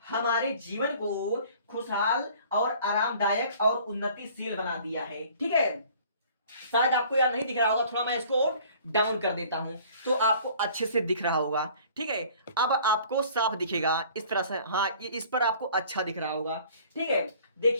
हमारे जीवन को खुशहाल और आरामदायक और उन्नतिशील बना दिया है। ठीक है, शायद आपको यार नहीं दिख रहा होगा, थोड़ा मैं इसको डाउन कर देता हूं तो आपको अच्छे से दिख रहा होगा। ठीक है, अब आपको साफ दिखेगा इस तरह से, हाँ इस पर आपको अच्छा दिख रहा होगा। ठीक है,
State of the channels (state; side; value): inverted; both; correlation -0.51